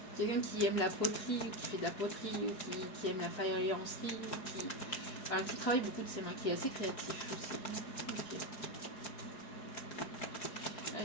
Quelqu'un qui aime la poterie ou qui fait de la poterie ou qui aime la faïencerie, qui travaille beaucoup de ses mains, qui est assez créatif aussi. Okay.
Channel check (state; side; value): late; right; 4.7 ms